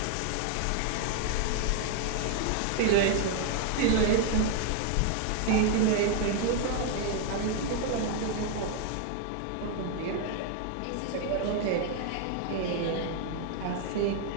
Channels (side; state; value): both; different; correlation 0.00